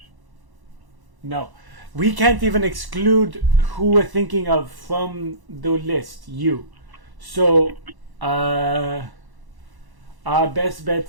No. We can't even exclude who we're thinking of from the list. You. So, our best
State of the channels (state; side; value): late; left; 1.1 ms